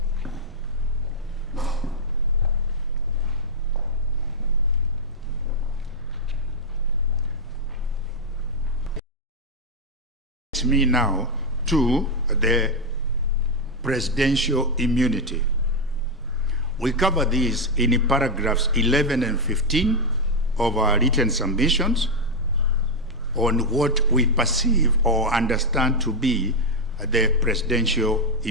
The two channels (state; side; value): normal; both; correlation 0.02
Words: Me now to the presidential immunity. We cover these in paragraphs 11 and 15 of our written submissions on what we perceive or understand to be the presidential